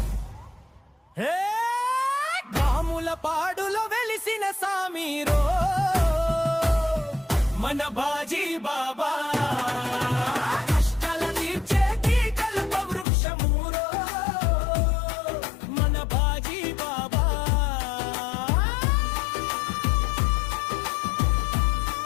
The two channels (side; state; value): right; drops out; at 13.1 s